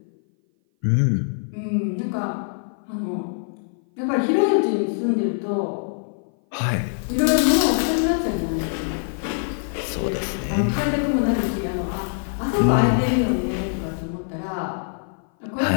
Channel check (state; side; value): silent; right; 58 dB below the other